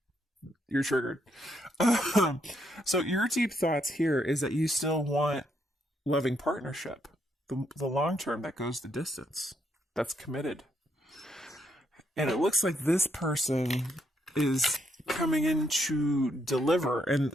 you're triggered. So your deep thoughts here is that you still want loving partnership, the long term that goes the distance, that's committed. And it looks like this person is coming in to deliver. And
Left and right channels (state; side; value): normal; both; correlation 0.75